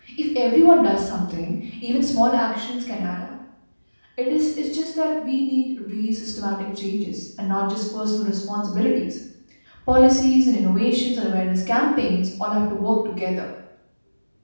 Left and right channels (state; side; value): inverted; both; correlation -1.00